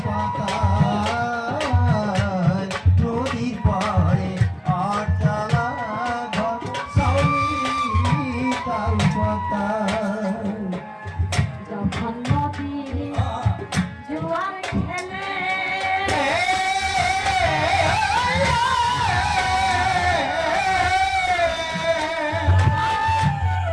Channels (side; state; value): both; identical; correlation 1.00